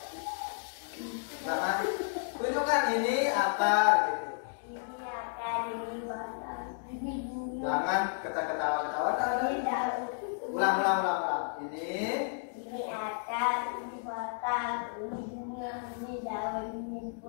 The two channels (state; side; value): silent; right; digital silence